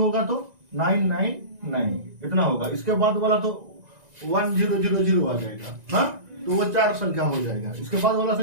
तो 999 इतना होगा। इसके बाद वाला तो 1000 आ जाएगा। हाँ, तो वो 4 संख्या हो जाएगा। इसके बाद वाला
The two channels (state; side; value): late; left; 1.9 ms